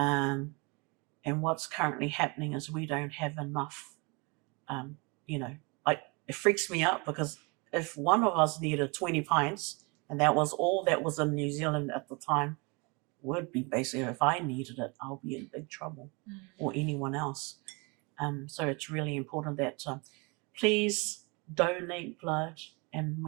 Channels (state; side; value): quieter; left; 29.5 dB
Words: what's currently happening is we don't have enough. It freaks me out because if one of us needed 20 pints, and that was all that was in New Zealand at the time, would be basically, if I needed it, I'll be in big trouble, or anyone else. So it's really important that please donate blood, and